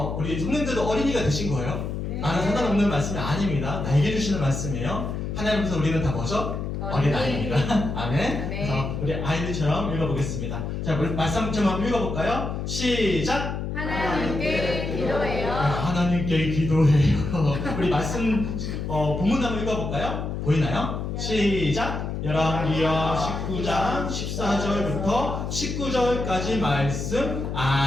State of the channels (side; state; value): left; noise; hum, 4 dB below the sound